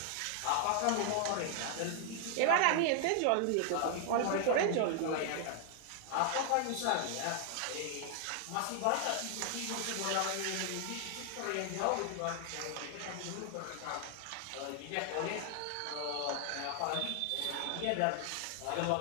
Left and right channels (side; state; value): both; different; correlation 0.00